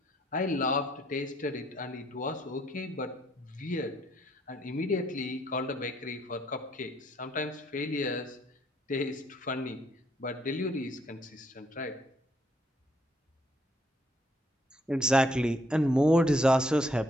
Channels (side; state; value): both; normal; correlation 0.69